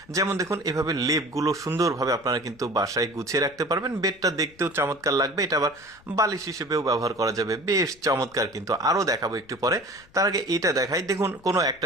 যেমন দেখুন এভাবে লেপগুলো সুন্দরভাবে আপনারা কিন্তু বাসায় গুছিয়ে রাখতে পারবেন। বেডটা দেখতেও চমৎকার লাগবে, এটা আবার বালিশ হিসেবেও ব্যবহার করা যাবে, বেশ চমৎকার। কিন্তু আরও দেখাবো একটু পরে। তার আগে এটা দেখাই, দেখুন কোনো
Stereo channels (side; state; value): left; noise; rumble, 27 dB below the sound